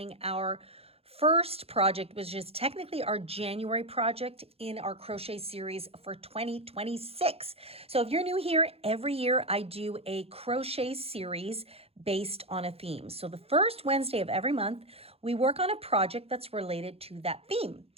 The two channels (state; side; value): late; left; 0.29 ms